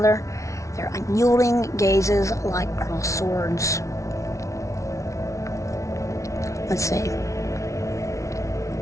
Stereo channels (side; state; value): right; late; 0.15 ms